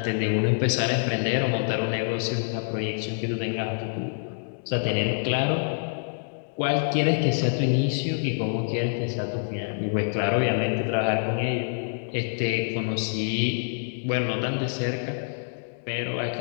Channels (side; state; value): right; silent; digital silence